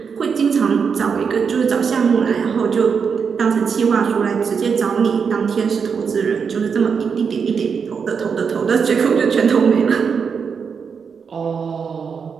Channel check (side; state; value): left; quieter; 6.1 dB